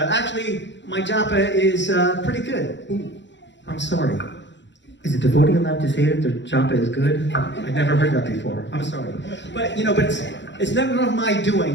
Actually, my japa is pretty good. Ooh, I'm sorry. Is a devotee allowed to say that their japa is good? I've never heard that before. I'm sorry. But, you know, it's never my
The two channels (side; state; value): right; late; 0.52 ms